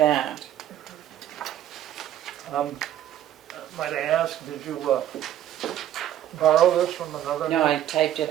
Might I ask, did you borrow this from another? No, I typed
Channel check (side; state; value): left; quieter; 11.8 dB